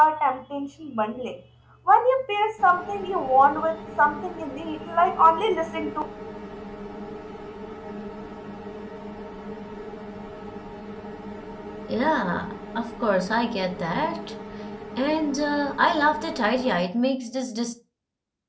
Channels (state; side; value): identical; both; correlation 1.00